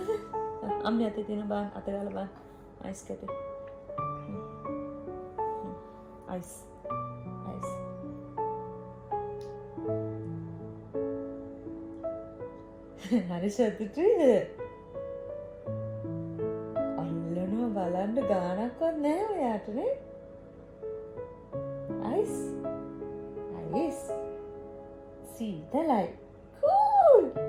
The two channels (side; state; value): both; identical; correlation 1.00